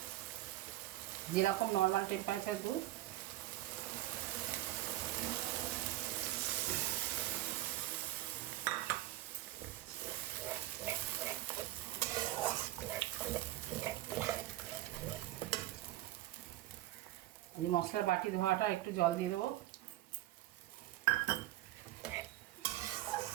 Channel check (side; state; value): left; quieter; 15.9 dB